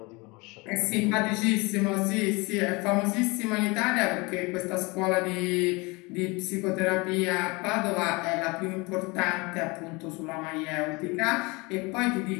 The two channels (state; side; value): quieter; right; 26.0 dB